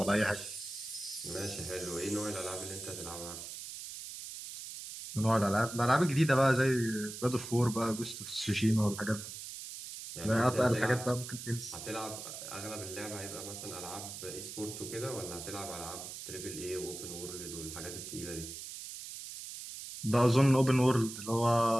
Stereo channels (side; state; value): right; noise; hiss, 10 dB below the sound